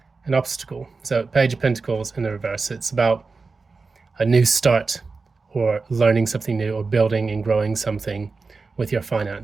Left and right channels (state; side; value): quieter; left; 4.2 dB